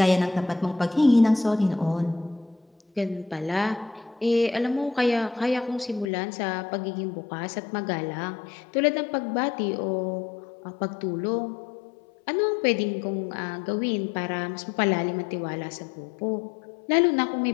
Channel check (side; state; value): right; drops out; at 6.1 s